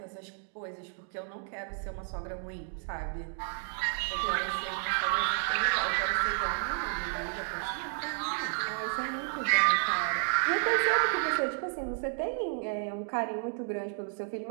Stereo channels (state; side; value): silent; left; digital silence